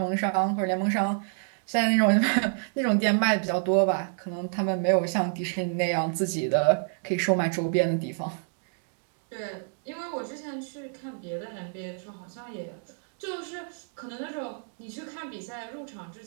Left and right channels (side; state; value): left; silent; 59 dB below the other